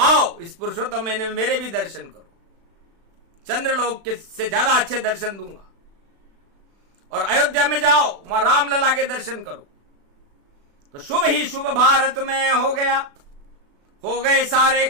इस पुरुषोत्तम महीने में मेरे भी दर्शन करो, चंद्रलोक के से ज्यादा अच्छे दर्शन दूंगा। और अयोध्या में जाओ, वहां रामलला के दर्शन करो। तो शुभ ही शुभ भारत में हो गया, हो गए सारे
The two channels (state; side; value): late; left; 36 ms